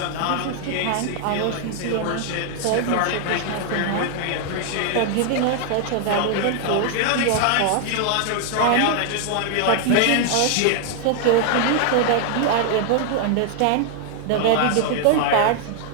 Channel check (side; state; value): both; different; correlation 0.00